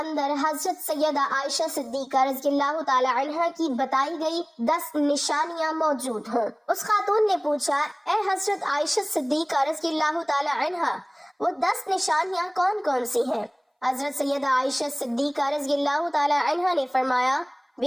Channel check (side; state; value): both; identical; correlation 1.00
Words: حضرت سیدہ عائشہ صدیقہ رضی اللہ تعالی عنہ کی بتائی گئی 10 نشانیاں موجود ہوں۔ اس خاتون نے پوچھا اے حضرت عائشہ صدیقہ رضی اللہ تعالی عنہ وہ 10 نشانیاں کون کون سی ہیں؟ حضرت سیدہ عائشہ صدیقہ رضی اللہ تعالی عنہ نے فرمایا